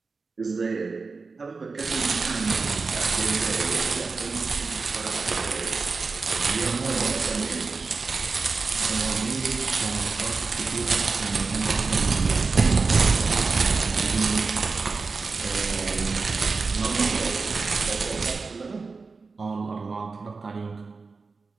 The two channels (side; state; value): left; quieter; 4.3 dB